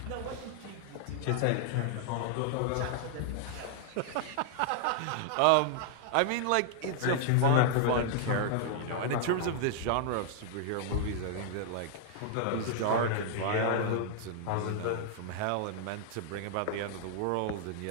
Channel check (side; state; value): both; different; correlation -0.01